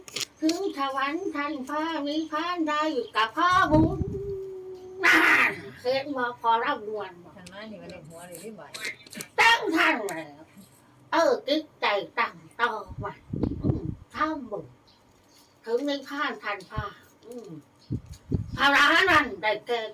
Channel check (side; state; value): both; identical; correlation 1.00